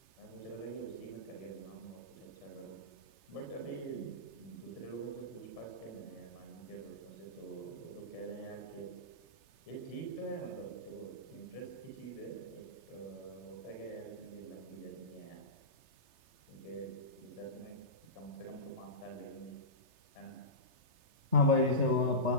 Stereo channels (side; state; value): left; late; 3.3 ms